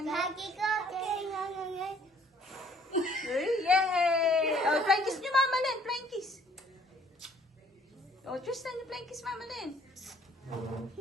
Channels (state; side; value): normal; both; correlation 0.60